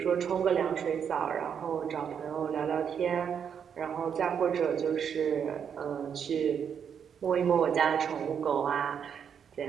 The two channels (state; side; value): quieter; left; 7.6 dB